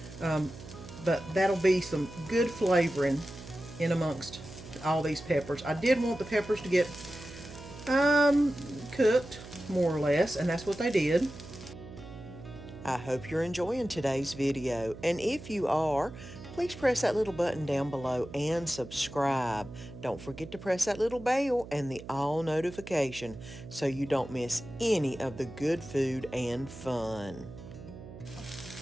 But that'll be some good flavoring in amongst all these peppers. I did want the peppers to get cooked more or less, and that's what they did. I hope you're enjoying today's video, and if you are, please press that little button down below and subscribe. Don't forget to press that little bell and the all notification so you don't miss any of the good food and fun.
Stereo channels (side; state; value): right; noise; hum, 14 dB below the sound